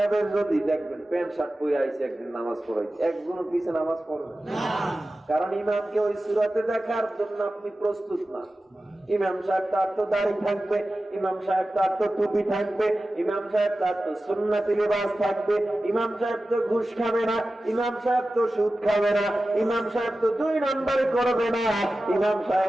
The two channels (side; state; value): both; normal; correlation 0.95